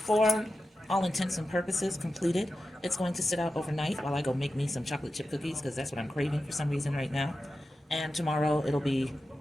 all intents and purposes, completed. It's going to sit out overnight while I go make me some chocolate chip cookies because that's what I'm craving for some reason right now. And tomorrow it'll be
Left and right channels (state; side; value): normal; both; correlation 0.92